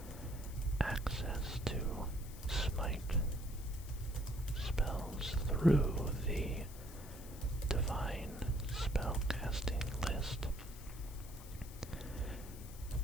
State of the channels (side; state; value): left; noise; hiss, 17 dB below the sound